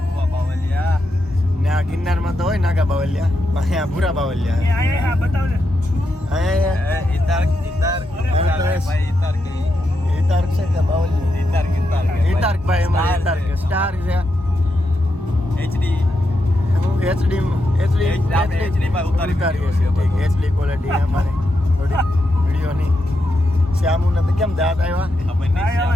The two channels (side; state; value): both; normal; correlation 0.84